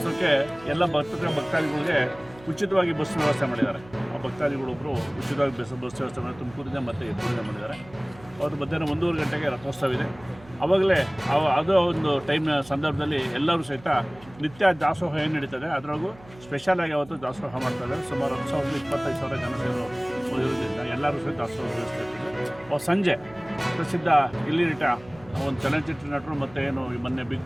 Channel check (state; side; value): noise; right; hum, 22 dB below the sound